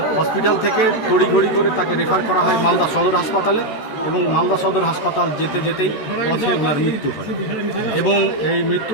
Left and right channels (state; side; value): late; right; 13 ms